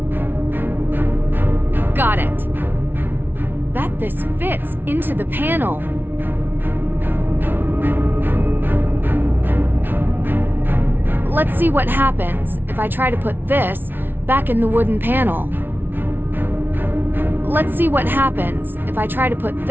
Got it. Bet this fits into the panel. Let's see what happens if I try to put this back in the wooden panel. Let's see what happens if I try to put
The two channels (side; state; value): left; late; 0.10 ms